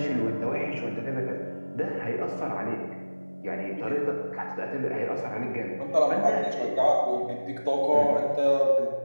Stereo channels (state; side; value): inverted; both; correlation -1.00